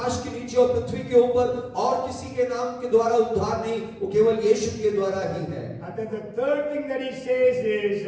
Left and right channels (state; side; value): identical; both; correlation 1.00